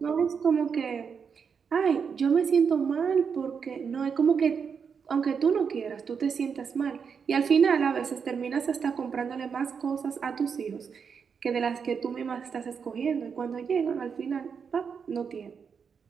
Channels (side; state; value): left; quieter; 6.3 dB